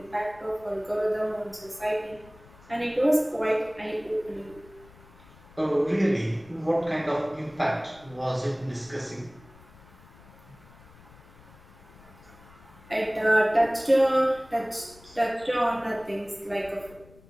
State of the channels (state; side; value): noise; left; rumble, 23 dB below the sound